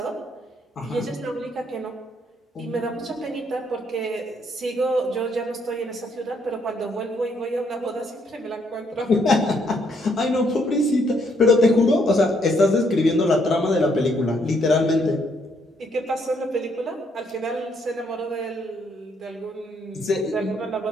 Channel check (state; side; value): normal; both; correlation 0.71